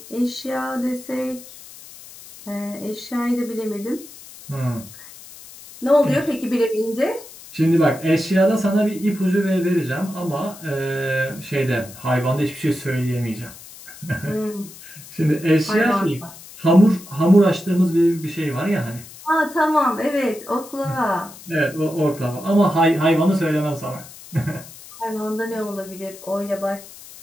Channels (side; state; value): left; noise; hiss, 18 dB below the sound